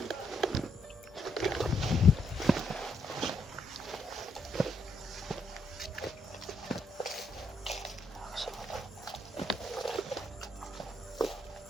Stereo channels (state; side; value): normal; both; correlation 0.76